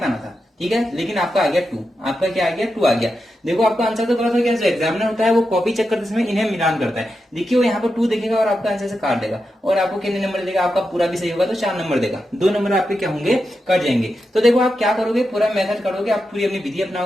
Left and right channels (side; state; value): both; normal; correlation 0.88